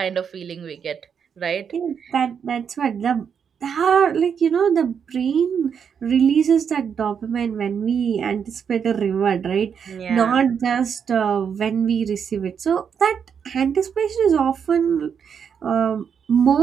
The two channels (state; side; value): quieter; left; 7.2 dB